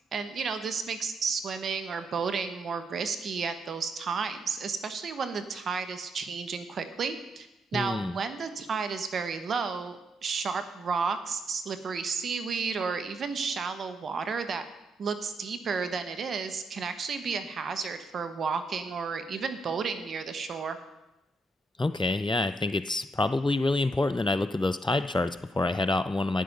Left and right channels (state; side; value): normal; both; correlation 0.78